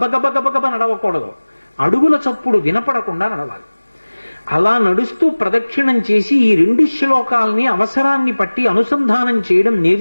గబగబ నడవకూడదు, అడుగుల చప్పుడు వినపడకుండా నడవాలి. అలా నడుస్తూ ప్రదక్షిణం చేసి ఈ 2 శ్లోకాల్ని అవసరాన్ని పట్టి అనుసంధానం చేయడం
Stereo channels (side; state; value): both; inverted; correlation -1.00